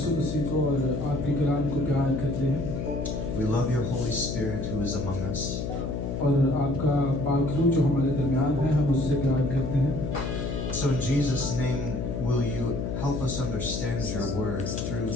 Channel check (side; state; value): left; noise; hum, 3 dB below the sound